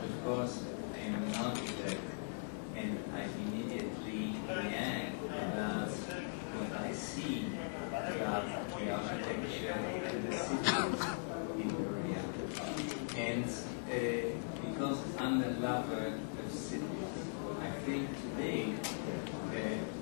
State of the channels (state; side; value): silent; right; digital silence